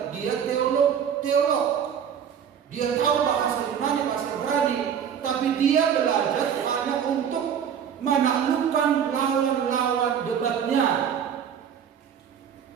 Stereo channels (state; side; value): quieter; left; 8.2 dB